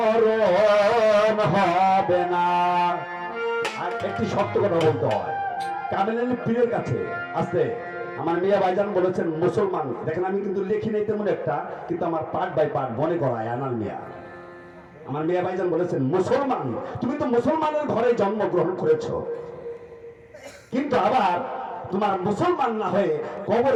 হবে না। আর একটি সত্য কথা বলতে হয়, কামেল পীরের কাছে আসতে আমার মিয়া ভাইজান বলেছেন মুসলমান, দেখেন আমি কিন্তু লিখি নাই তেমন একটা, কিন্তু আমার পার্ট বাই পার্ট মনে করায় আনাল মিয়া। আমার মিয়া ভাইজান বলেছেন মুসলমান, তুমি তো মুসলমানের ঘরে জন্মগ্রহণ করেছো, কিন্তু আবার তোমার মুসলমান না হয়ে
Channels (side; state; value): both; identical; correlation 1.00